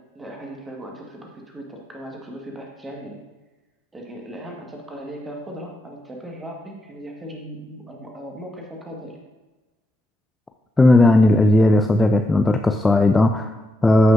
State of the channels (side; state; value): both; normal; correlation 0.85